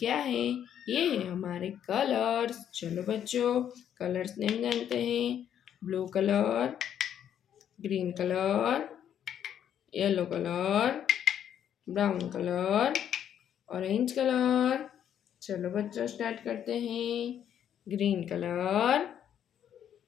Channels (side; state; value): right; quieter; 9.6 dB